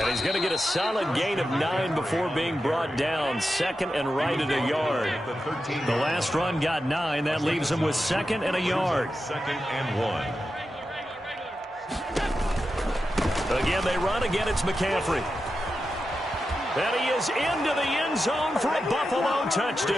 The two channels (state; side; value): normal; both; correlation 0.90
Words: he's going to get a solid gain of 9 before being brought down. 2nd and right at a yard. The last run got 9. That leaves him with 2nd and a yard. 2nd and 1. Again, they run. Again, it's McCaffrey. And he is into the end zone for a Buffalo